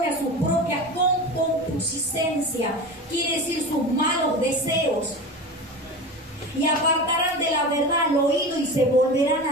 a su propia concupiscencia, quiere decir sus malos deseos, y apartarán de la verdad el oído y se volverán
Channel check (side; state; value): both; normal; correlation 0.29